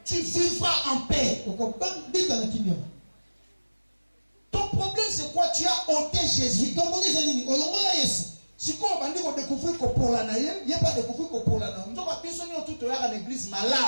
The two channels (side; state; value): both; inverted; correlation -1.00